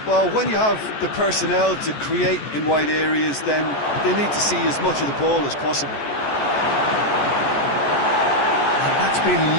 Well, when you have the personnel to create in wide areas, then they need to see as much of the ball as possible. And that's been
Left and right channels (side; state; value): right; late; 14 ms